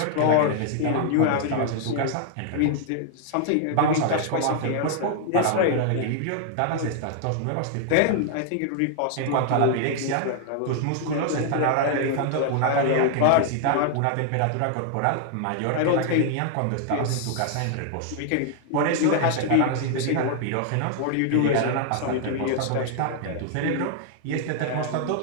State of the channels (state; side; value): different; both; correlation 0.00